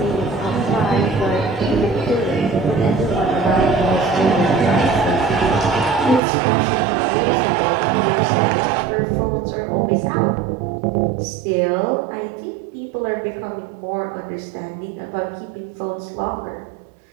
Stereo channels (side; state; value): left; drops out; at 6.2 s